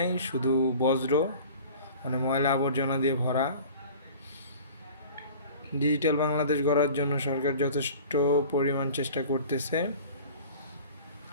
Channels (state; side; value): inverted; both; correlation -0.42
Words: শুধু বজ্র, মানে ময়লা আবর্জনা দিয়ে ভরা। ডিজিটাল বাংলাদেশ গড়ার জন্য সরকার যথেষ্ট পরিমাণ চেষ্টা করতেছে।